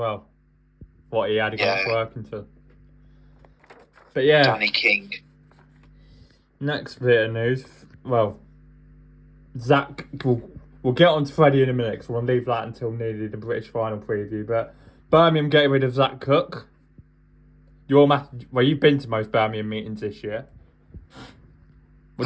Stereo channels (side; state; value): both; identical; correlation 1.00